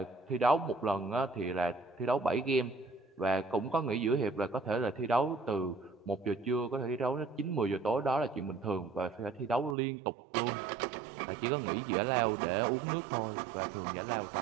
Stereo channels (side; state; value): left; drops out; at 9.8 s